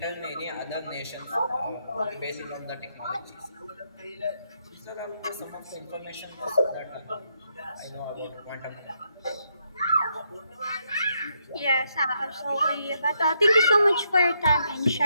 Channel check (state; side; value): inverted; both; correlation -0.77